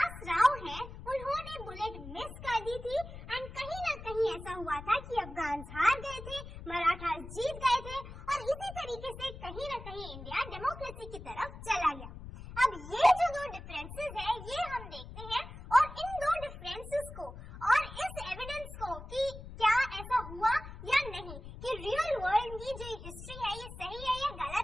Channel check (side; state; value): left; noise; rumble, 12 dB below the sound